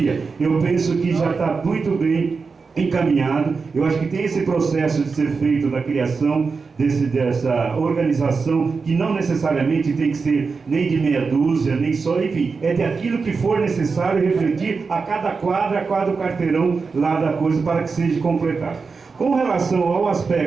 eu penso que já está muito bem encaminhado. Eu acho que tem esse processo de ser feito da criação dessa organização, que não necessariamente tem que ser nem de meia dúzia, nem só, enfim, é de aquilo que for necessário refletir a cada quadra, a cada quarteirão lá da coisa, para que seja completado. Com relação ao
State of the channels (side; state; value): left; quieter; 4.8 dB